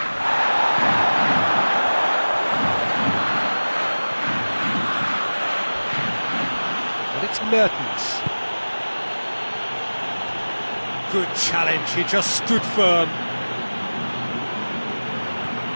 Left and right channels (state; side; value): inverted; both; correlation -1.00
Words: And it's Mertens. Good challenge, he just stood firm.